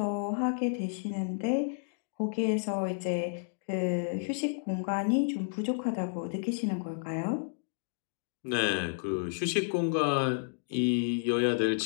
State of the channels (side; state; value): right; silent; digital silence